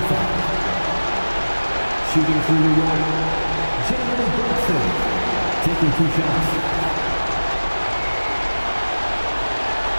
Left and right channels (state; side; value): inverted; both; correlation -1.00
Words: foul. Shooting for New York, Jalen Brunson, taking 2 shots.